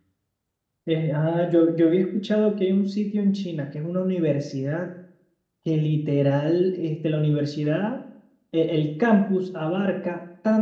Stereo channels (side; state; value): both; identical; correlation 1.00